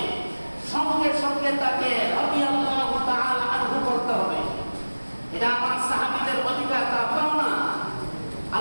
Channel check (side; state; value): both; inverted; correlation -1.00